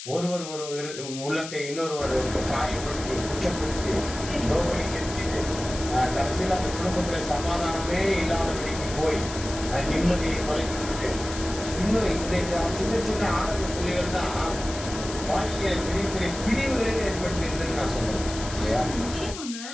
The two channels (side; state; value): left; noise; hiss, 10 dB below the sound